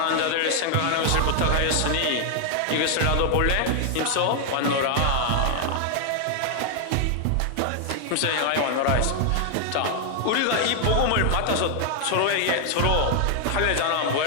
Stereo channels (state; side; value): different; both; correlation 0.00